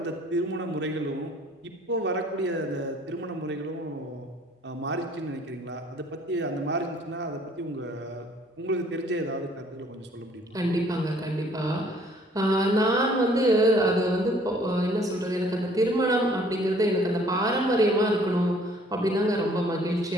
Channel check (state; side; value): normal; both; correlation 0.58